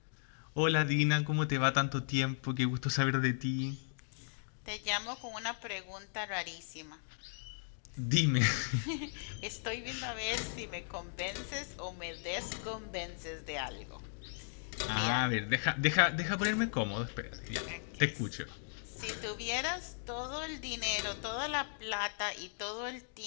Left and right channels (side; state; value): right; silent; digital silence